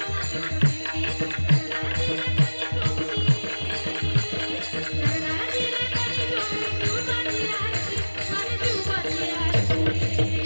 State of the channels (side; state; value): both; inverted; correlation -1.00